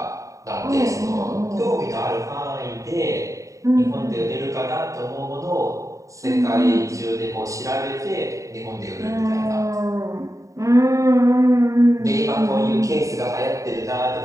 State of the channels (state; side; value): late; left; 0.16 ms